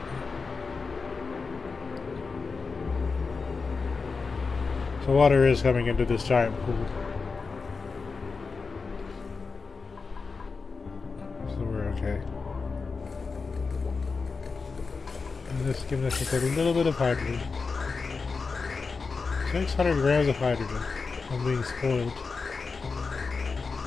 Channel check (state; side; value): quieter; right; 4.6 dB